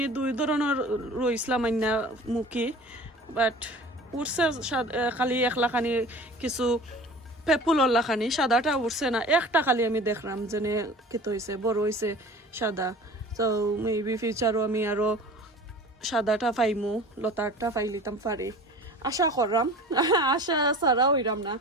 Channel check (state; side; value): normal; both; correlation 0.41